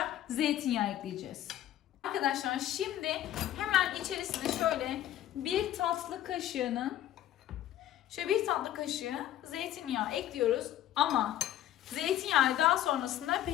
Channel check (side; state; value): right; quieter; 12.5 dB